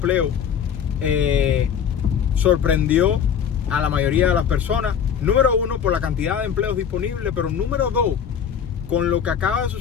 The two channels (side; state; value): right; quieter; 8.0 dB